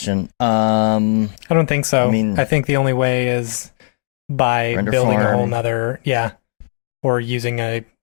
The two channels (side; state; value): right; silent; digital silence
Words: I don't think so. I think the only way is by building a whole nother, or using a